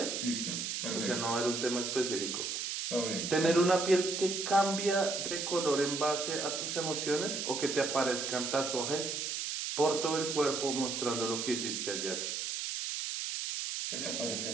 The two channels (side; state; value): right; noise; hiss, 3 dB below the sound